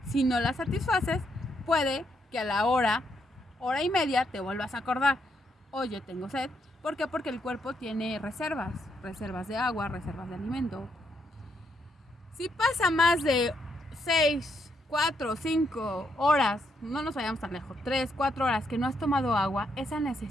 Si no la satisfaces, puede que a la hora y media te vuelvas a acordar. Oye, tengo sed. ¿Por qué? Porque el cuerpo tiene reservas de agua, reservas de alimento. Si pasa más de 6, 4, 5 horas, no nos vayamos tan lejos, 3, 4 horas que no has tomado agua, esa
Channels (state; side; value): normal; both; correlation 0.77